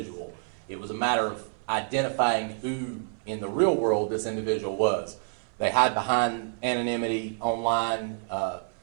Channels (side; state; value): left; silent; 58 dB below the other